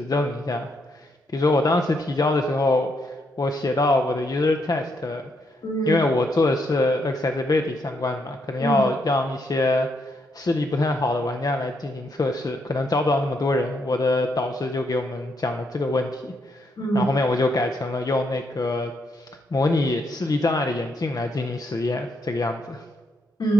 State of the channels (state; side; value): normal; both; correlation 0.76